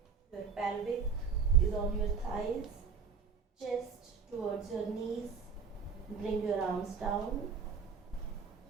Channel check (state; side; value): quieter; left; 6.1 dB